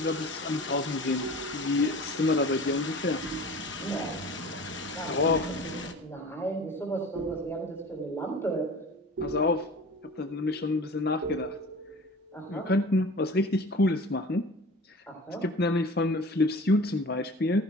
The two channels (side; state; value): both; normal; correlation 0.40